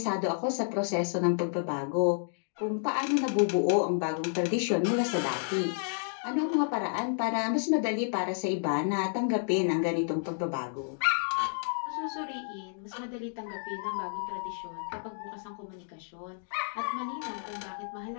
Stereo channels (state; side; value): silent; right; digital silence